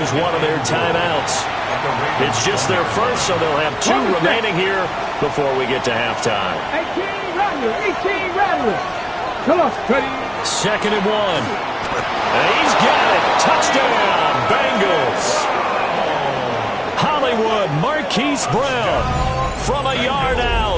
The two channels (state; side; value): identical; both; correlation 1.00